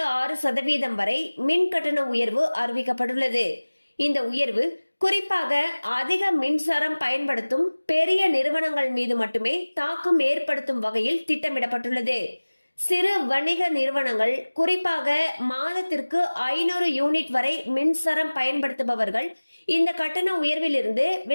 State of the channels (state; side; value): inverted; both; correlation -1.00